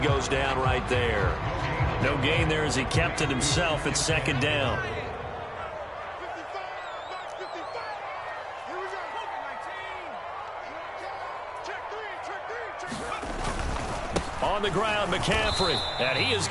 goes down right there. No gain there as he kept it himself at 2nd down. On the ground, McCaffrey, and he is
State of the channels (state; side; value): identical; both; correlation 1.00